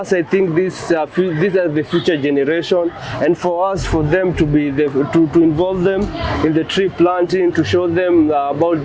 I think these are the future generation, and for them to be to involve them in the tree planting, to show them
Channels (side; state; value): both; identical; correlation 1.00